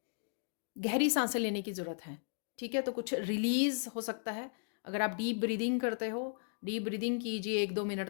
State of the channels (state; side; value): silent; right; digital silence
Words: गहरी सांसें लेने की ज़रूरत है। ठीक है, तो कुछ रिलीज़ हो सकता है। अगर आप डीप ब्रीदिंग करते हो, डीप ब्रीदिंग कीजिए 1-2 मिनट